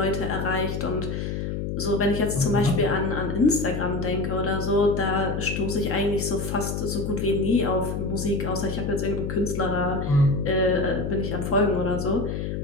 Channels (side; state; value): left; noise; hum, 3 dB below the sound